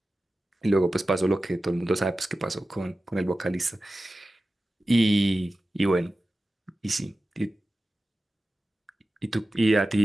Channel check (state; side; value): normal; both; correlation 0.95